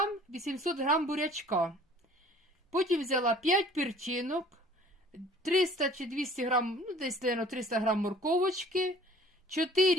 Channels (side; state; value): both; normal; correlation 0.51